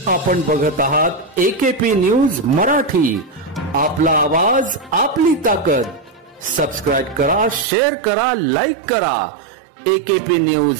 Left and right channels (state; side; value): drops out; left; at 7.7 s